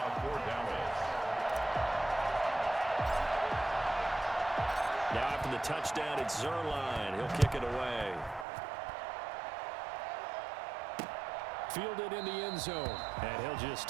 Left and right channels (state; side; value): drops out; left; at 8.5 s